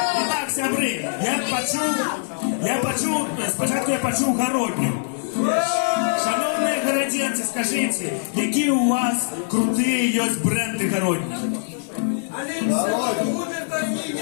І так, сябри, спочатку я почув Городню. Шановні городенці, скажіть, які у вас круті є бренди Городні?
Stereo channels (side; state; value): right; silent; digital silence